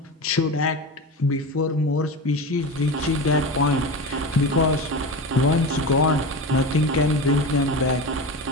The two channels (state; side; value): normal; both; correlation 0.25